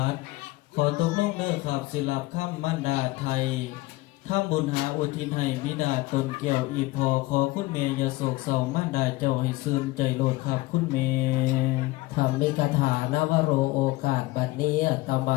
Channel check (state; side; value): quieter; right; 20.5 dB